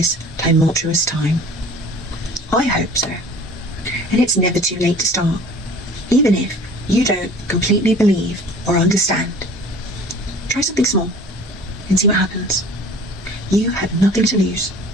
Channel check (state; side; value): normal; both; correlation 0.46